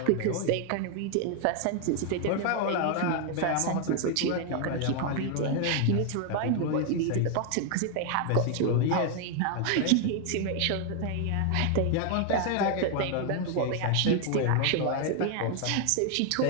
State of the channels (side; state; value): both; different; correlation 0.00